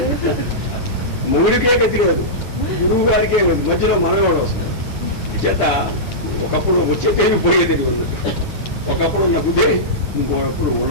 మొగుడికే గతి లేదు, గురువు గారికే మధ్యలో మనవాడు వస్తుంది. చేత ఒకప్పుడు వచ్చే తెలివి పోయే తెలివి ఉన్నట్టు. ఒకప్పుడు ఉన్న బుద్ధి ఇంకొకప్పుడు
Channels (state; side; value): late; right; 9.4 ms